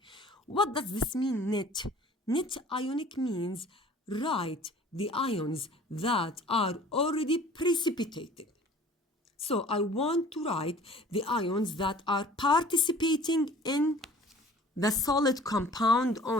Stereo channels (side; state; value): both; normal; correlation 0.48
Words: What does this mean, net? Net ionic means write the ions that are already precipitated. So I want to write the ions that are participating in the solid compound